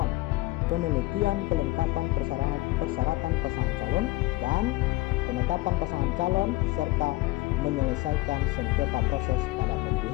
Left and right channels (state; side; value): quieter; right; 19.8 dB